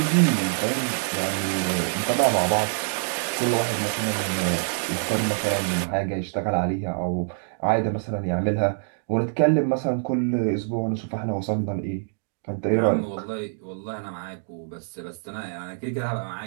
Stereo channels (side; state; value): left; silent; digital silence